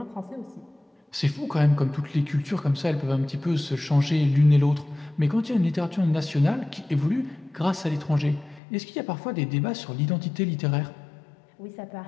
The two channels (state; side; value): drops out; right; at 8.6 s